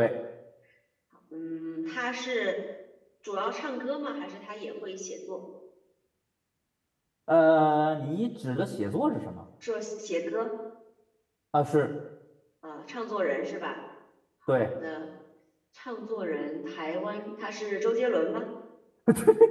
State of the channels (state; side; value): identical; both; correlation 1.00